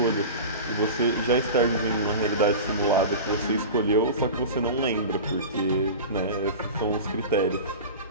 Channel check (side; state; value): both; inverted; correlation -0.30